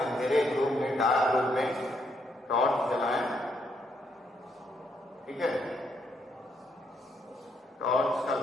अंधेरे रूम में, डार्क रूम में टॉर्च जलाएं, ठीक है, टॉर्च का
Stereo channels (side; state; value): both; normal; correlation 0.75